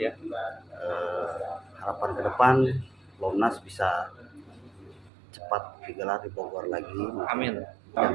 Harapan ke depan Lomnas bisa cepat digelar di Bogor lagi. Amin.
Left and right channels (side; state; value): left; drops out; at 5.1 s